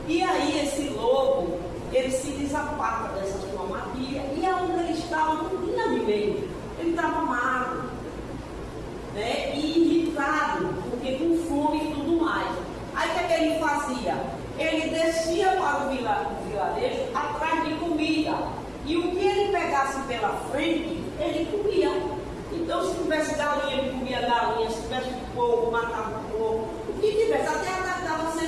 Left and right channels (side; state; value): both; identical; correlation 1.00